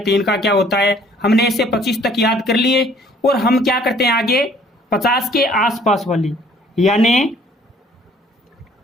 का क्या होता है। हमने ऐसे 25 तक याद कर लिए। और हम क्या करते हैं आगे? 50 के आसपास वाली यानी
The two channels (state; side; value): normal; both; correlation 0.58